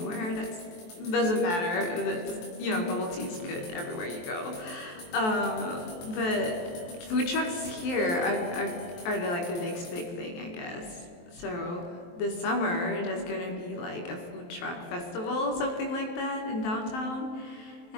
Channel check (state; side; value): late; right; 23 ms